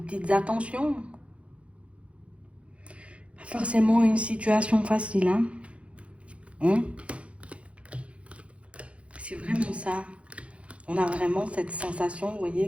attentions. Pas forcément une situation facile, hein. Hein. C'est vraiment ça. On a vraiment cette sensation, vous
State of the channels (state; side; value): late; left; 0.062 ms